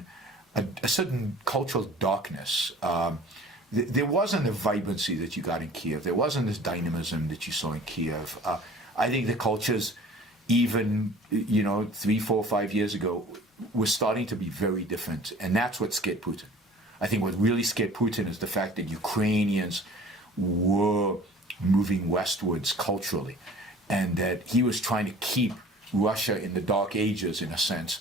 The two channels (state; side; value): normal; both; correlation 0.47